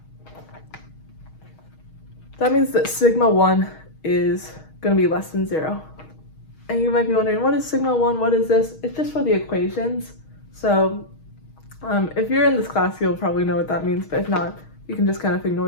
that sigma 1 is going to be less than 0. And you might be wondering, what is sigma 1? What is this? It's just for the equations. So if you're in this class, you'll probably know what that means, but if not, you can just kind of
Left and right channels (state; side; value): late; right; 6.4 ms